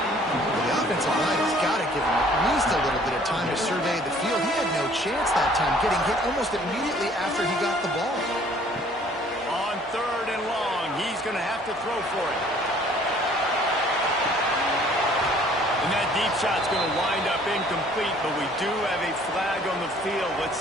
The offensive line has got to give him at least a little bit of time to survey the field. He had no chance that time, getting hit almost immediately after he got the ball. On 3rd and long, he's going to have to throw for it. And that deep shot's going to wind up incomplete, but we do have a flag on the field. Let's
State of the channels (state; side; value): normal; both; correlation 0.56